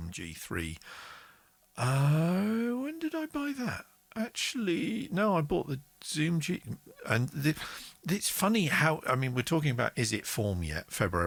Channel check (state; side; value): identical; both; correlation 1.00